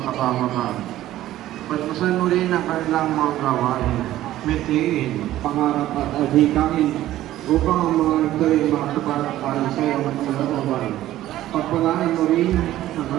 kapamakan. Pagpasan mo rin ang kanilang mga gawain, mitiin, pangarap at adhikain, upang ang mga ito ay makasapat para sa iyo at kalooban. Pagpalaan mo rin ang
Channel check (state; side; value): quieter; left; 14.1 dB